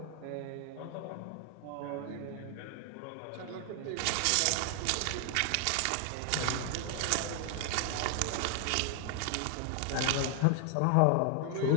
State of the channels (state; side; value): different; both; correlation 0.00